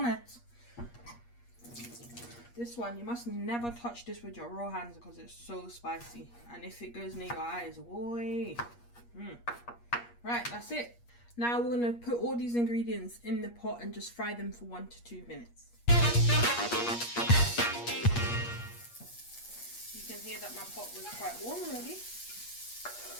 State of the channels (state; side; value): late; right; 8.4 ms